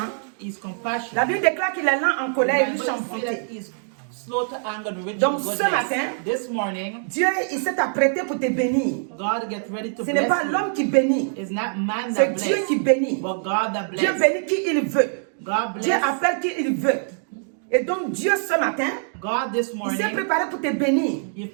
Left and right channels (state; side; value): silent; left; 63 dB below the other